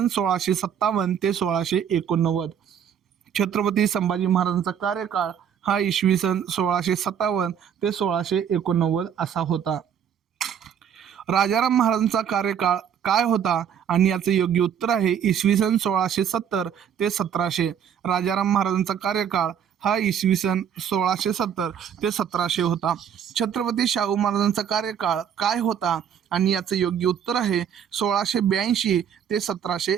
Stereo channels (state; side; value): quieter; left; 8.5 dB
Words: 1657 ते 1689. छत्रपती संभाजी महाराजांचा कार्यकाळ हा इसवी सन 1657 ते 1689 असा होता. राजाराम महाराजांचा कार्यकाळ काय होता? आणि याचं योग्य उत्तर आहे, इसवी सन 1670 ते 1700. राजाराम महाराजांचा कार्यकाळ हा इसवी सन 1670 ते 1700 होता. छत्रपती शाहू महाराजांचा कार्यकाळ काय होता? आणि याचं योग्य उत्तर आहे, 1682 ते